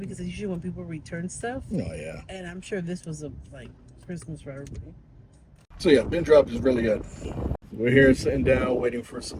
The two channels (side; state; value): both; identical; correlation 1.00